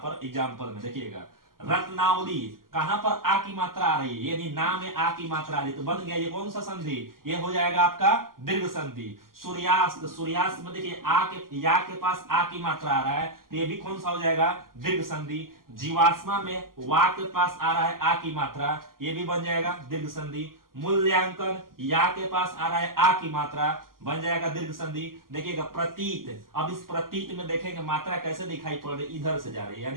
एग्जाम्पल में, देखिएगा रत्नावली, कहां पर आ की मात्रा आ रही है, यानी नाम में आ की मात्रा आ रही है, तो बन गया ये कौन सा संधि, ये हो जाएगा आपका दीर्घ संधि। सूर्यास्त, सूर्यास्त में देखिए आ के, या के पास आ की मात्रा आ रहा है, तो ये भी कौन सा हो जाएगा, दीर्घ संधि। जीवाश्मा में वा के पास आ रहा है आ की मात्रा, ये भी बन जाएगा दीर्घ संधि। मूल्यांकन, या के पास आ रहा है आ की मात्रा, बन जाएगा दीर्घ संधि। देखिएगा प्रतीत, अब इस प्रतीत में देखेंगे मात्रा कैसे दिखाई पड़ रही, इधर से जा रही है,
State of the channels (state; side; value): late; left; 0.91 ms